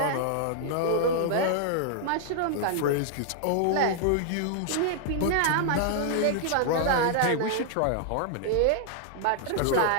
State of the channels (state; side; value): different; both; correlation -0.01